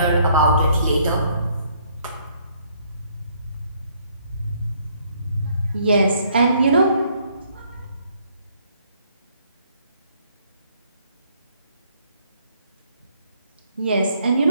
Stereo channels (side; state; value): both; inverted; correlation -0.66